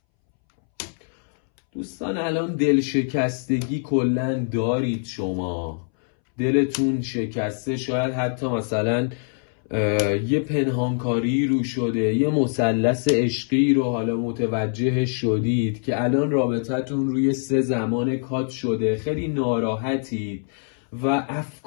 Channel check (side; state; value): right; silent; 63 dB below the other